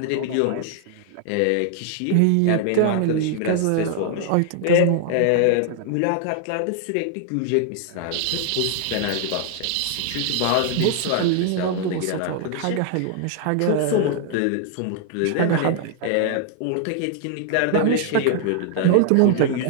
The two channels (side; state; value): both; different; correlation 0.00